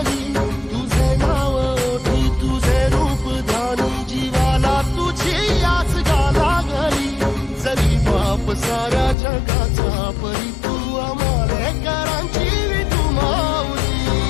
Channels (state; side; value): drops out; right; at 9.2 s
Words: तुझे नाव ओठी तुझे रूप ध्यानी जीवाला तुझी आस गाला गली जरी बाप साऱ्या जगाचा परी तू आमालेकरांची विठू माऊली